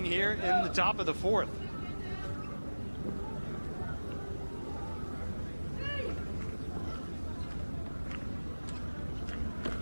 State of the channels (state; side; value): inverted; both; correlation -1.00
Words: here in the top of the 4th.